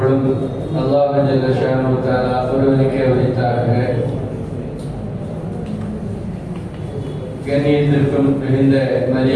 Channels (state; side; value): identical; both; correlation 1.00